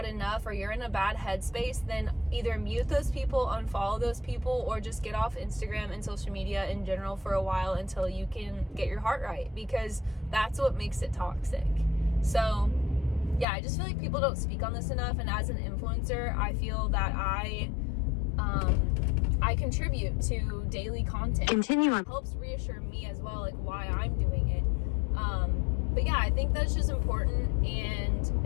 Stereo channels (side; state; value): right; drops out; at 13.5 s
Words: enough, or you're in a bad headspace, then either mute those people, unfollow those people, or just get off Instagram and social media in general for a while until you can get your heart right, because that's what makes it toxic. So yeah, I just feel like people don't speak on this enough, and as an influencer, I feel that I contribute to daily content. Continue on. It helps reassure me as well, like why I'm doing it. But yeah, I think that's just important, and